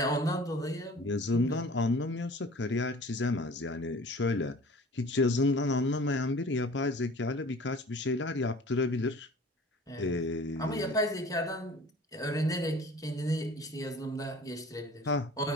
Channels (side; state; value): both; normal; correlation 0.45